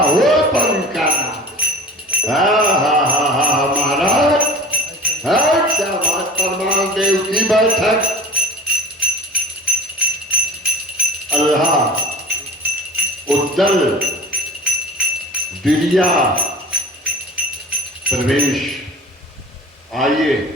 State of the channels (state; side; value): normal; both; correlation 0.39